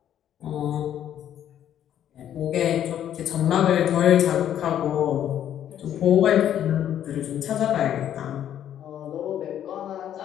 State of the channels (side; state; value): right; quieter; 10.5 dB